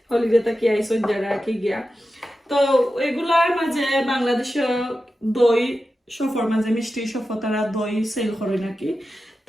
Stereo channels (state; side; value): normal; both; correlation 0.92